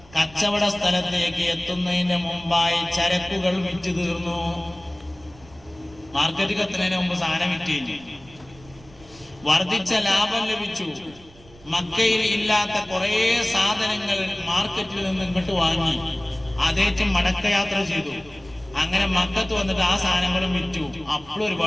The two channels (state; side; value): noise; right; rumble, 24 dB below the sound